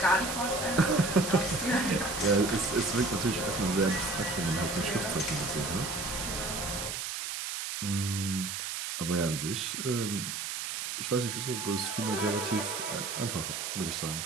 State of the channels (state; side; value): noise; right; hiss, 4 dB below the sound